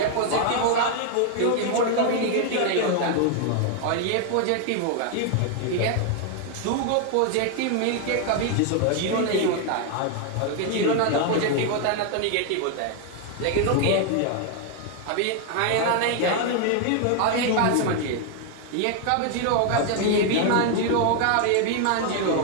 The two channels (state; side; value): different; both; correlation 0.01